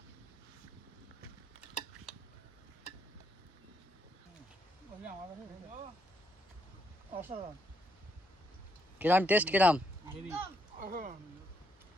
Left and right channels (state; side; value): normal; both; correlation 0.76